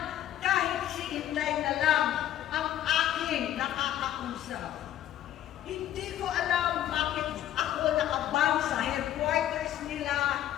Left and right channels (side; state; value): right; quieter; 12.0 dB